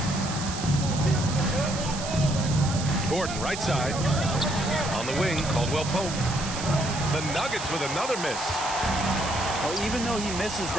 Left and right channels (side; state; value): right; noise; hiss, 8 dB below the sound